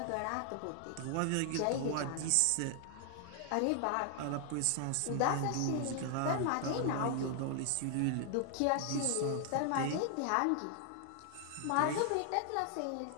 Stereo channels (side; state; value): both; different; correlation 0.00